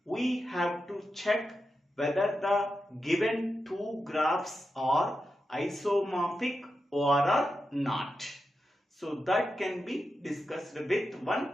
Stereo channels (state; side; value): normal; both; correlation 0.89